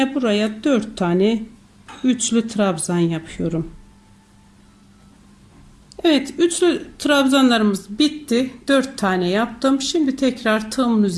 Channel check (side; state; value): both; identical; correlation 1.00